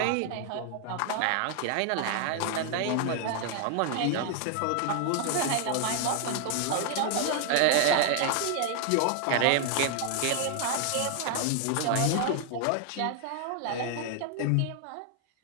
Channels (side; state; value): both; different; correlation 0.00